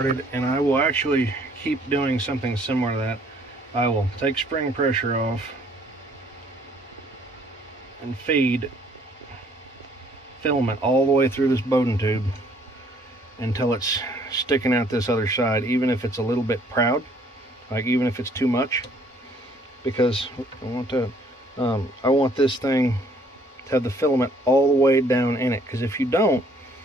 and I will actually keep doing something similar to that. I will take spring pressure off and feed filament all the way through this Bowden tube until it's sticking out this other side, even if it's a little bit proud, like even if it's too much, because I want this thing to have the filament all the way down in it, because if you don't,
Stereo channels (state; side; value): normal; both; correlation 0.61